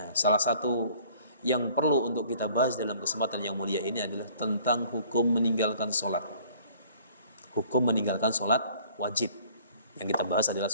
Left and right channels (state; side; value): inverted; both; correlation -0.54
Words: salah satu yang perlu untuk kita bahas dalam kesempatan yang mulia ini adalah tentang hukum meninggalkan sholat. Hukum meninggalkan sholat wajib. Yang kita bahas adalah